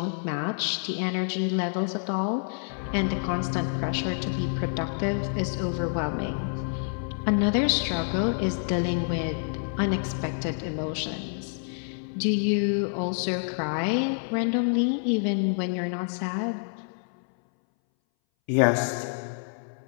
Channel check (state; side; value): silent; right; 60 dB below the other